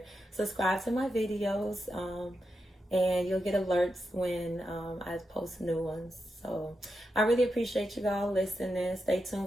Subscribe to my videos, and you'll get alerts when I post new ones. So I really appreciate you all listening. Stay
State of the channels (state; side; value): normal; both; correlation 0.87